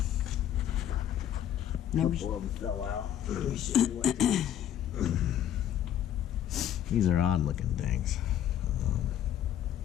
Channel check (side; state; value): right; quieter; 10.7 dB